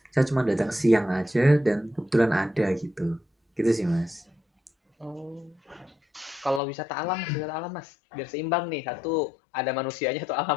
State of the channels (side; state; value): right; drops out; at 6.6 s